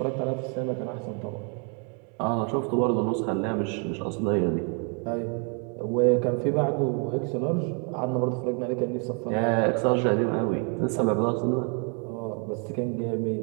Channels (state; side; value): quieter; left; 38.5 dB